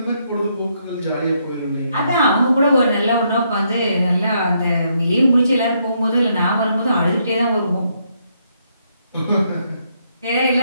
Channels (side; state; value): both; inverted; correlation -0.75